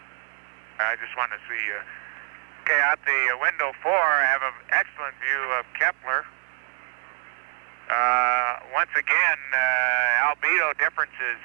I just want to see. Okay, out the window 4, I have an excellent view of Kepler. Once again, albedo differences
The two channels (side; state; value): left; silent; digital silence